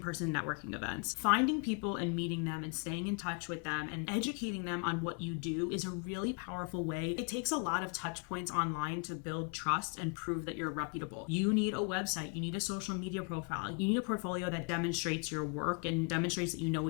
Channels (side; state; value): right; quieter; 37.2 dB